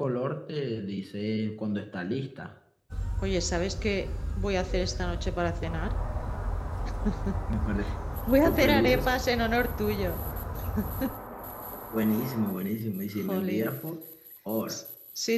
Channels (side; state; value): both; identical; correlation 1.00